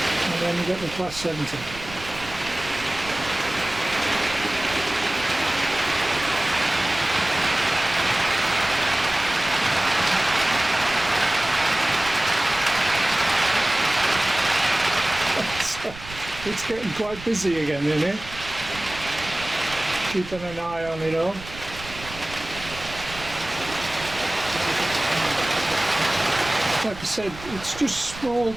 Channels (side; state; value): right; noise; rumble, 15 dB below the sound